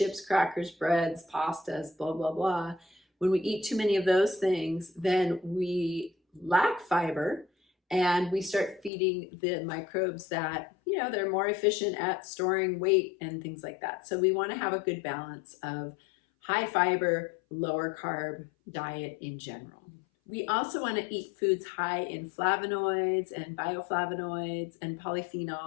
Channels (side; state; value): right; drops out; at 8.9 s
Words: crackers, breads, pastas, blah, blah, blah. When we eat too many of those things, then we lack fiber, and we start feeding the microbes that, they're more efficient at storing weight and things like that. So we want to have a good balance of high fiber, lower carb diet in general. We also want to eat foods high in flavonoids and bioflavonoids and